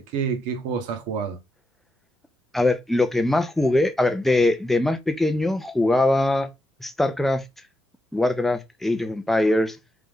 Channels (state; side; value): normal; both; correlation 0.86